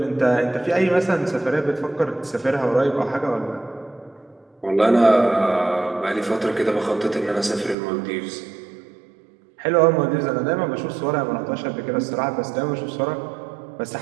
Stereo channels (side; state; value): left; drops out; at 7.8 s